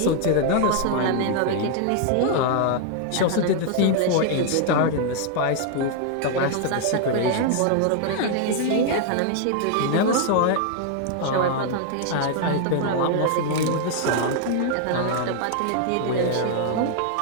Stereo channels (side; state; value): both; different; correlation 0.00